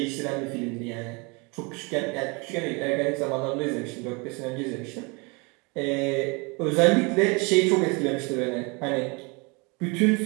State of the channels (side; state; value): left; quieter; 29.5 dB